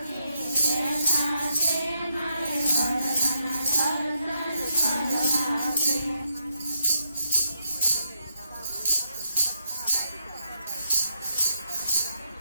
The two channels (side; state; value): both; inverted; correlation -0.80